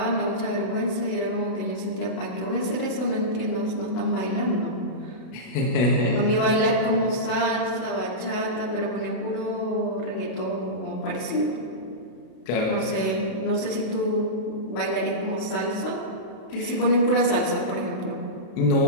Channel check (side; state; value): right; late; 32 ms